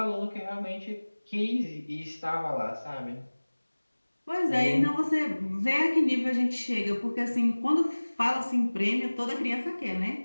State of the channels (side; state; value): both; inverted; correlation -1.00